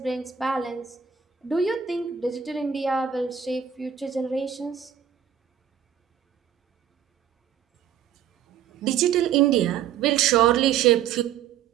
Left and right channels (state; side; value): quieter; left; 8.8 dB